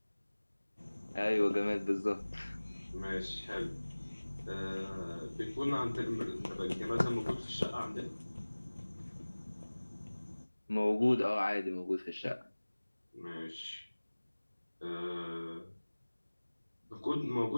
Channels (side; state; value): both; inverted; correlation -1.00